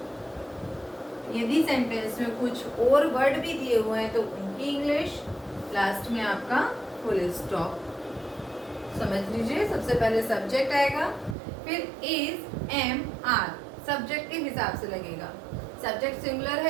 यदि सेंटेंस में कुछ और वर्ड भी दिए हुए हैं तो उनकी इंग्लिश, लास्ट में आपका फुल स्टॉप। समझ लीजिए, सबसे पहले सब्जेक्ट आएगा, फिर इज, एम, आर सब्जेक्ट के हिसाब से लगेगा। सब्जेक्ट सिंगुलर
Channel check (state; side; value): drops out; left; at 11.4 s